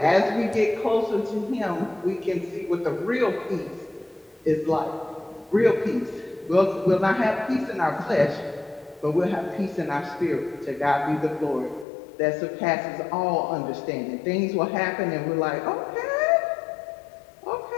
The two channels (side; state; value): right; drops out; at 11.9 s